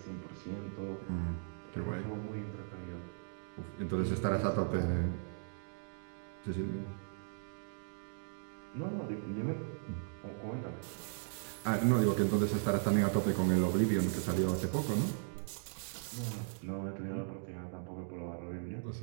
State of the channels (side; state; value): left; silent; digital silence